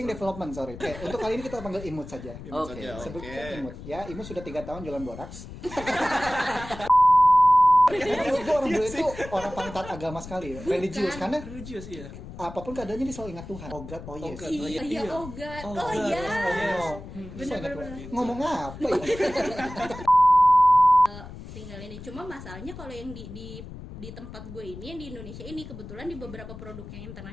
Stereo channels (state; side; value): noise; left; rumble, 13 dB below the sound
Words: development, sorry. Untuk kali ini kita panggil Imut saja. Sebutkan Imut. Ya, Imut sudah 3 tahun jualan boraks. Gue orang bule itu orang paling taat agama sekali, religius karena iya. Apapun keadaannya dia selalu ingat Tuhan. Oh God, oh yes. Oh God, oh yes. Bener. Ngomong apa ya? Tinggal ini. Cuma masalahnya kalau yang di tempat gue ini, yang di Indonesia ini, kebetulan di beberapa produk yang